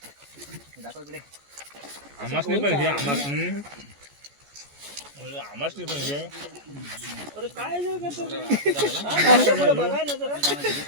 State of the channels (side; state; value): left; late; 14 ms